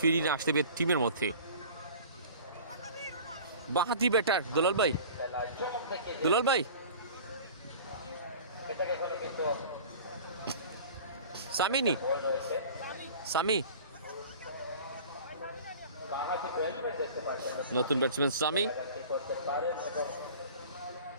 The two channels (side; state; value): both; inverted; correlation -0.41